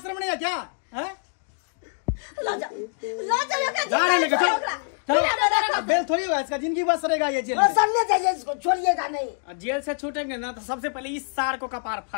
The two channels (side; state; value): right; silent; 62 dB below the other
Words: रमणे है क्या हैं ला जाओ एकरा जा रहे लेके चलो बेल थोड़ी होगा इसका जिंदगी बस रहेगा ये जेल में सर ले जाइए इसको छोड़िएगा नहीं जेल से छूटेंगे ना तो सबसे पहले इस सार को कपार